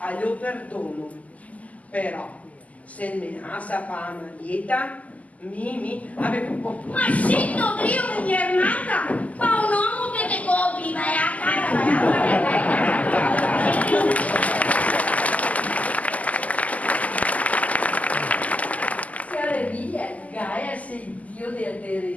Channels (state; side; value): late; right; 0.074 ms